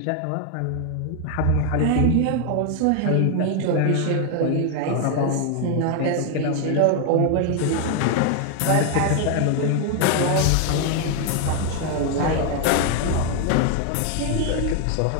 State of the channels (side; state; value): both; different; correlation 0.00